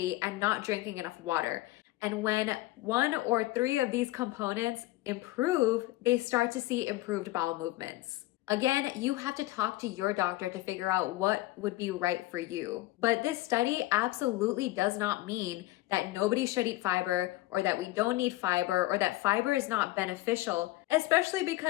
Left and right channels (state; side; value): quieter; right; 18.0 dB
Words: and not drinking enough water. And when 1 or 3 of these components improve, they start to see improved bowel movements. Again, you have to talk to your doctor to figure out what would be right for you. But this study absolutely does not mean that nobody should eat fiber, or that we don't need fiber, or that fiber is not beneficial, especially